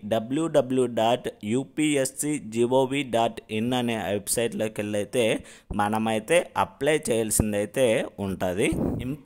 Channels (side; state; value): both; identical; correlation 1.00